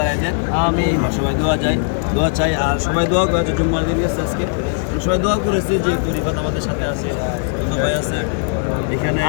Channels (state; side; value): silent; right; digital silence